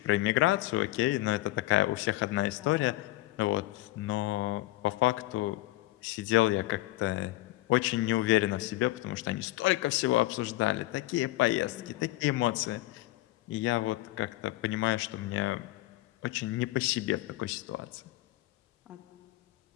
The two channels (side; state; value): right; quieter; 17.5 dB